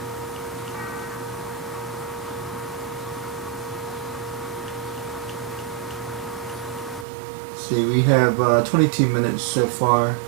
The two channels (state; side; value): drops out; left; at 7.1 s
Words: See, we have 22 minutes so far.